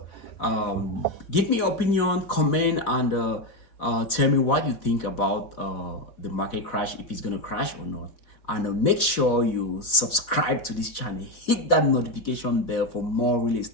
give me your opinion, comment, and tell me what you think about the market crash, if it's gonna crash or not. And make sure you subscribe to this channel, hit that notification bell for more real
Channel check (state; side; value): late; right; 4.0 ms